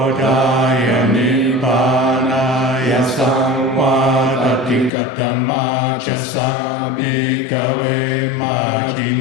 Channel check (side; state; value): right; drops out; at 4.9 s